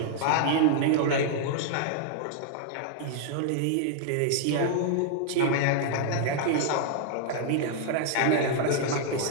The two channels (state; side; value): different; both; correlation -0.01